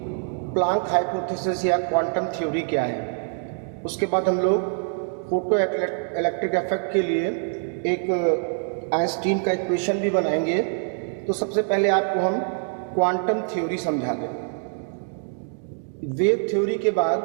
प्लैंक हाइपोथेसिस या क्वांटम थ्योरी क्या है। उसके बाद हम लोग फोटो इलेक्ट्रिक इफेक्ट के लिए एक आइंस्टीन का इक्वेशन भी बनाएंगे। तो सबसे पहले आपको हम क्वांटम थ्योरी समझा दें। वेव थ्योरी के बाद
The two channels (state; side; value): silent; left; 62 dB below the other